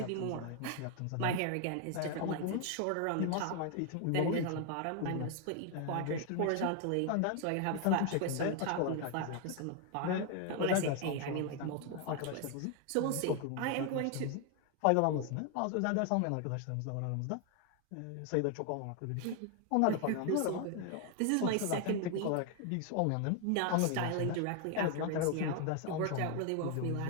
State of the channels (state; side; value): different; both; correlation 0.01